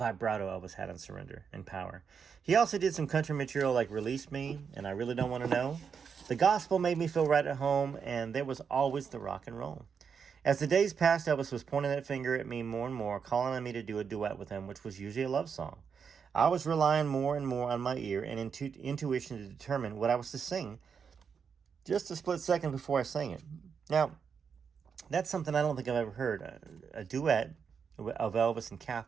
Elvis had on Surrender and Power. He also did some country material like Release Me and I Really Don't Want to Know. The gospel made me feel right at home, and there was always the rock and roll. As the days passed, Elvis was pointing that finger at me more and more, calling on me to do a duet with him, which was usually a love song. I was relying more and more on my ear and intuition to determine what I was to sing just a split second before I sang it. Now, that's something I don't think I've ever heard, a duet of Elvis and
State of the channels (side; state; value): left; quieter; 6.4 dB